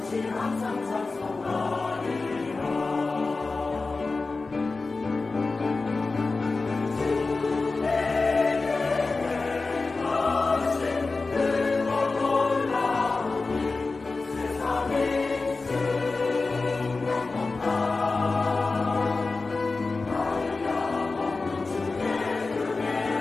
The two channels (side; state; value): right; quieter; 3.8 dB